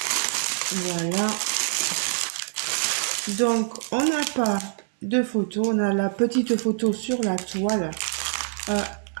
Voilà. Donc, on n'a pas de photo, on a la petite photo sur la toile.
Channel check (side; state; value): left; silent; 60 dB below the other